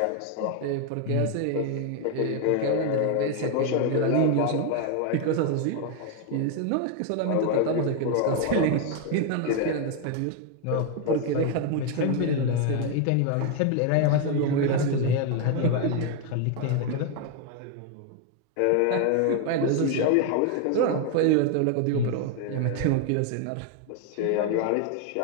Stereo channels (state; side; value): different; both; correlation 0.01